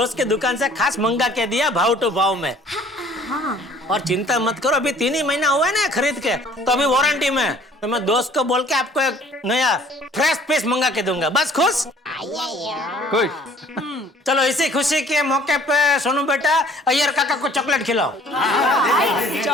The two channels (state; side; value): normal; both; correlation 0.54